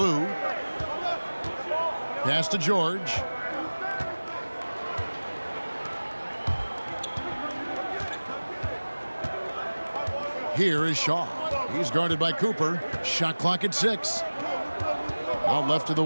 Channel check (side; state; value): both; inverted; correlation -1.00